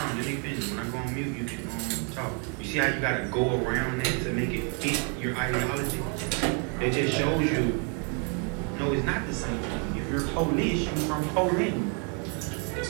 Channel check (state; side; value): quieter; left; 37.7 dB